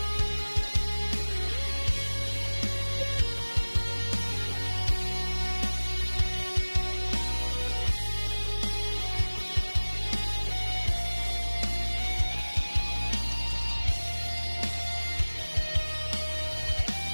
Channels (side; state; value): both; inverted; correlation -1.00